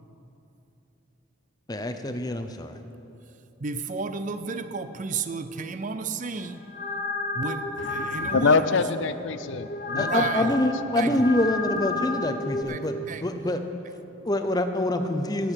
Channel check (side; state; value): both; normal; correlation 0.30